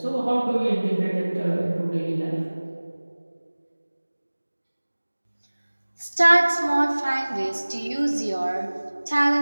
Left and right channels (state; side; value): inverted; both; correlation -1.00